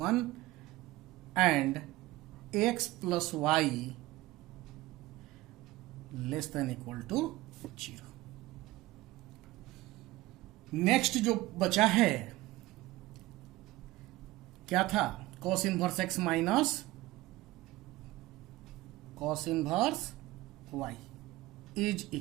1 and x plus y less than equal to 0। Next जो बचा है क्या था, cos inverse x minus cos inverse y is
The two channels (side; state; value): left; quieter; 18.3 dB